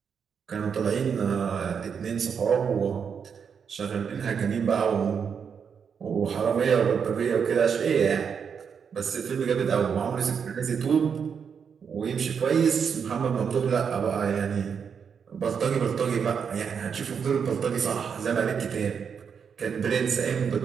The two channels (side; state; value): left; quieter; 6.8 dB